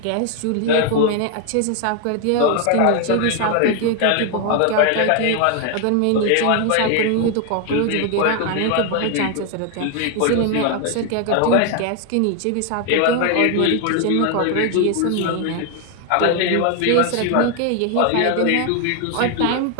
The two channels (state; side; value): different; both; correlation 0.00